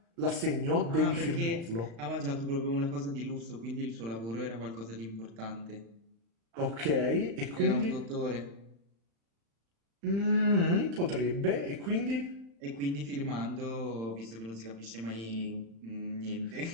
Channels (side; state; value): left; late; 35 ms